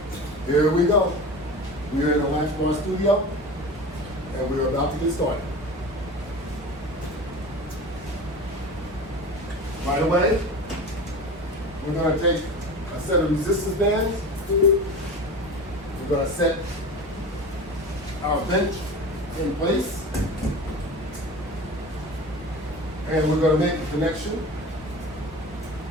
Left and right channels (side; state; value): both; normal; correlation 0.33